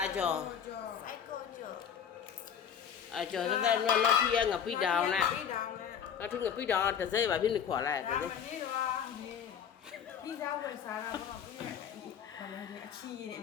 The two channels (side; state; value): right; quieter; 8.1 dB